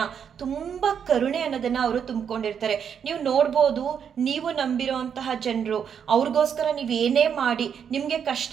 ತುಂಬ ಕರುಣೆ ಅನ್ನೋದನ್ನ ಅವರು ತುಂಬಿಕೊಂಡಿರ್ತಾರೆ. ನೀವು ನೋಡ್ಬೋದು, ನೀವು ನಂಬಿರೋಂತಹ ಜನರು ಅವ್ರಿಗೋಸ್ಕರ ನೀವೇನೇ ಮಾಡಿ ನಿಮಗೆ ಕಷ್ಟ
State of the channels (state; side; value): quieter; left; 7.7 dB